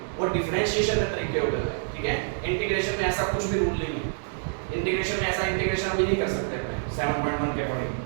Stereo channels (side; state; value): left; silent; digital silence